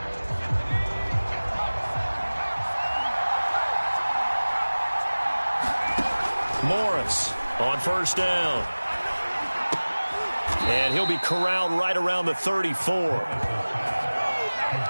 Morris on first down. And he'll be corralled right around the 34.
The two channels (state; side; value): inverted; both; correlation -1.00